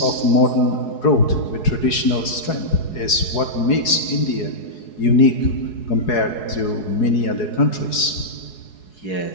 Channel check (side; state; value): right; late; 4.7 ms